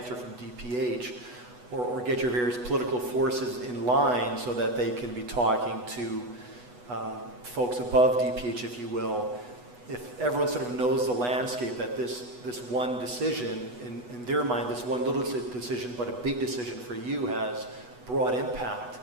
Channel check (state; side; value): late; left; 8.1 ms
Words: from DPH, or get your various political forces in line so that they can be talking to folks above DPH, if you will. If everyone sort of knows the landscape, that this one decision, in their mind, this one little decision, but a big decision for you has broad impact,